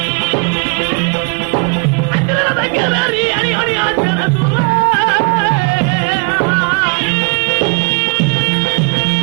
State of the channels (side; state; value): left; quieter; 31.6 dB